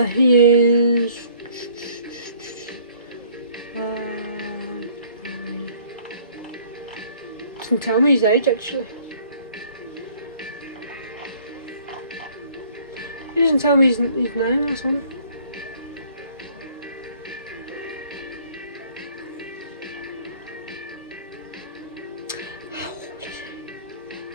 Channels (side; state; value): both; inverted; correlation -0.57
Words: doesn't tell me his age actually. He doesn't tell me his name or something. How old is he?